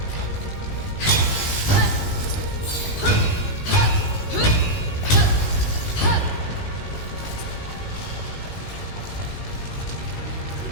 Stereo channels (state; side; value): late; right; 19 ms